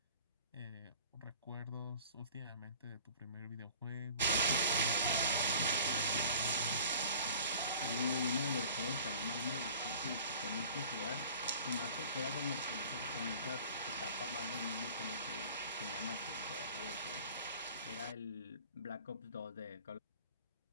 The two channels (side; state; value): both; inverted; correlation -0.46